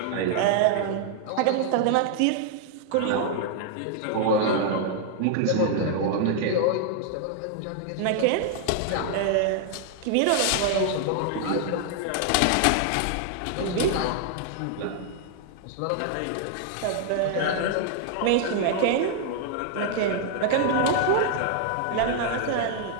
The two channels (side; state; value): both; different; correlation 0.00